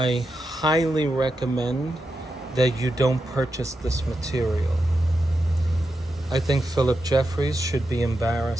highly recommend that you don't purchase this material. I think Phillip Jeffries should be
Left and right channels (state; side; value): normal; both; correlation 0.87